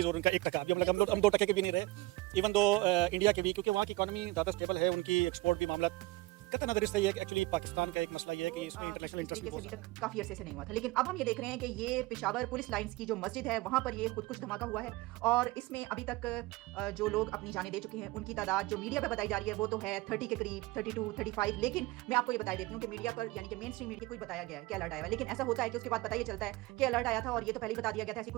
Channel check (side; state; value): left; quieter; 20.6 dB